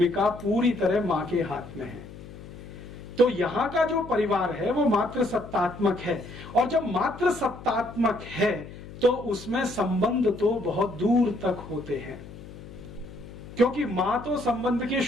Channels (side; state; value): left; noise; hum, 15 dB below the sound